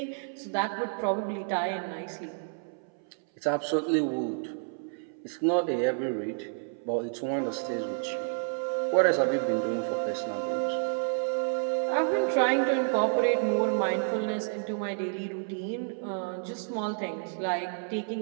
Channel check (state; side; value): silent; left; 58 dB below the other